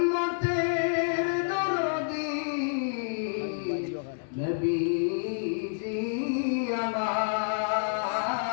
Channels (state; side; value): silent; right; digital silence